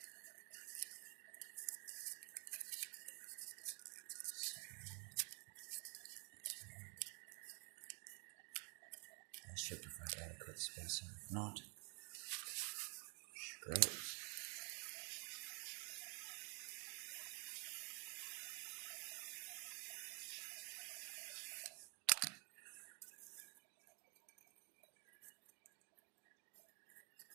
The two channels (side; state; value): left; quieter; 37.6 dB